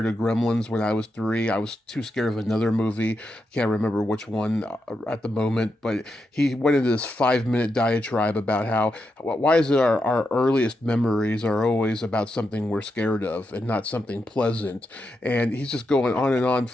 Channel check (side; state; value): both; normal; correlation 0.85